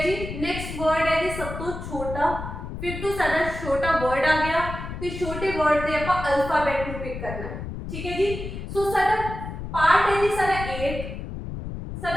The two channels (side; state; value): left; noise; rumble, 8 dB below the sound